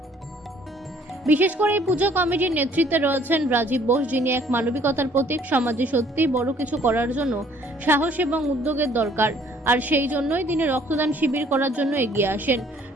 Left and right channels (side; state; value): both; normal; correlation 0.59